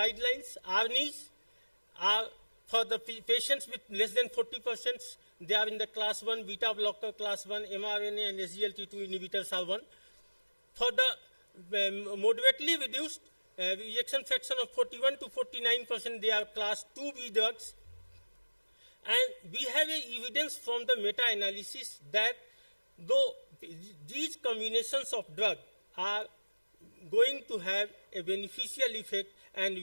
ARNIs are for the patients with less than 40%. They are in the class 1, beta blocker class 1, mRNA and SGLT2 inhibitors are 1. For the moderately reduced ejection fraction of 41 to 49%, they are class 2B drugs. And we have evidence from the meta-analysis that though these combinations of drugs are going to have a beneficial effect and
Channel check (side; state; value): both; inverted; correlation -1.00